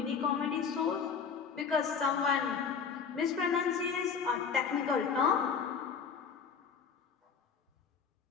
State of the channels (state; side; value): quieter; right; 6.3 dB